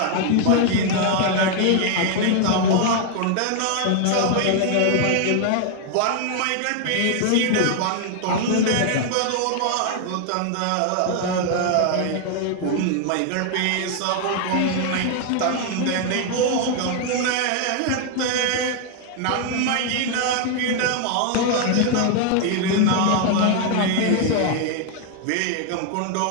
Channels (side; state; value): both; different; correlation 0.00